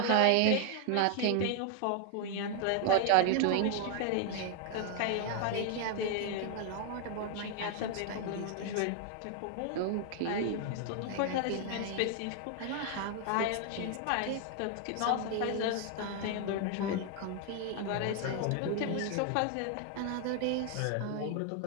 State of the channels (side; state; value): both; different; correlation 0.00